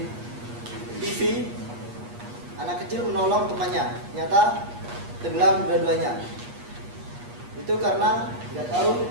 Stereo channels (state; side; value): late; left; 8.4 ms